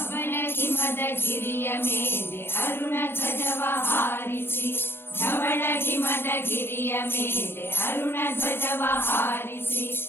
ಗಿರಿಯ ಮೇಲೆ ಅರುಣ ಧ್ವಜವ ಹಾರಿಸಿ, ಧವಳ ಹಿಮದ ಗಿರಿಯ ಮೇಲೆ ಅರುಣ ಧ್ವಜವ ಹಾರಿಸಿ,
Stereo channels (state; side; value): late; right; 0.11 ms